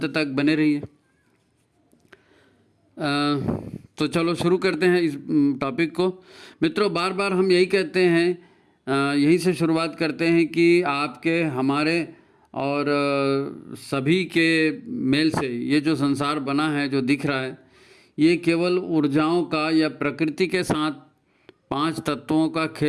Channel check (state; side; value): identical; both; correlation 1.00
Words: तक बने रहिए। तो चलो शुरू करते हैं इस टॉपिक को। मित्रों, बार बार हम यही कहते हैं, यहीं से शुरुआत करते हैं कि आपके, हमारे और सभी के मेल से ये जो संसार बना है, जो दिख रहा है, ये केवल ऊर्जाओं का या प्रकृति के साथ 5 तत्वों का